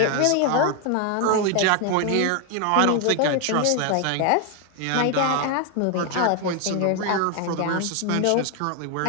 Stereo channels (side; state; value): both; different; correlation 0.01